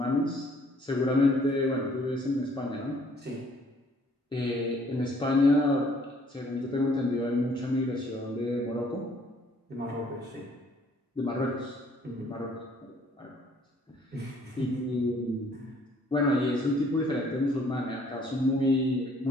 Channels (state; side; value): normal; both; correlation 0.61